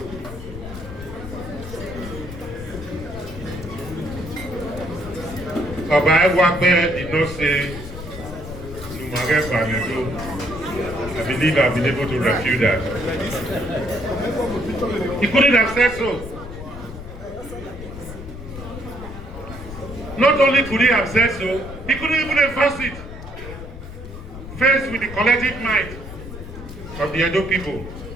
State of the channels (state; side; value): noise; left; rumble, 12 dB below the sound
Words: Obayuwana did not say, I believe I've been able to refute that. He couldn't have said so. Not only could he have said so, he couldn't even enforce it. Faced with the collective might of the Edo people.